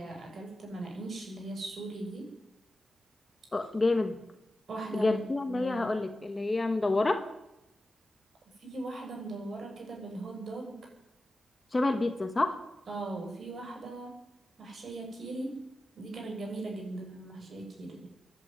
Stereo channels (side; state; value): both; normal; correlation 0.93